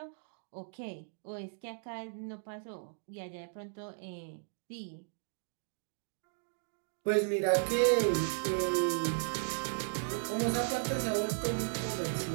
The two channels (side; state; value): left; silent; digital silence